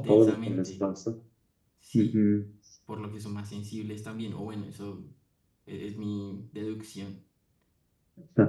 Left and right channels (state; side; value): identical; both; correlation 1.00